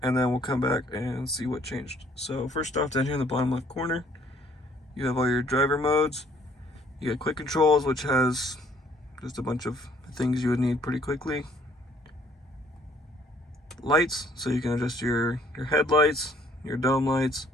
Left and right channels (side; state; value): both; normal; correlation 0.61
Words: and then we'll come back and see what changed. So first off, down here in the bottom left corner, you have all your driver modes. You got quick controls, which has just a bunch of things you would need pretty quickly. Lights, so you can adjust your headlights, your dome lights,